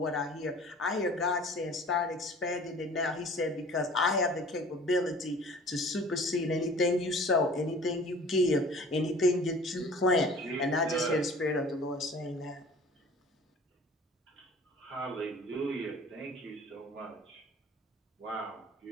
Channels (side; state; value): both; normal; correlation 0.46